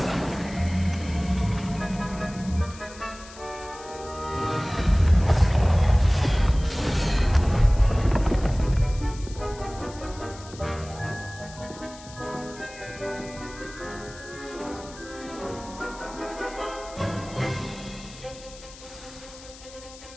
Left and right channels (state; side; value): noise; left; hiss, 18 dB below the sound